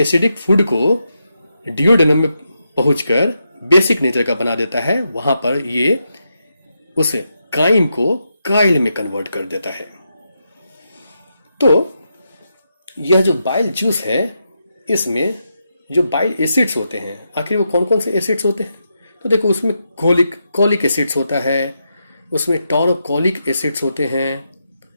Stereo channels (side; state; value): both; inverted; correlation -0.84